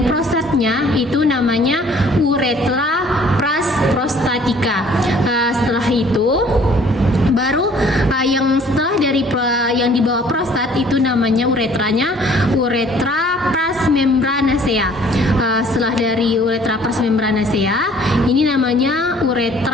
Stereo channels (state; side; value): normal; both; correlation 0.56